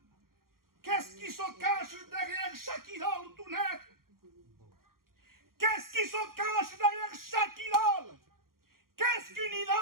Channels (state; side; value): late; left; 0.92 ms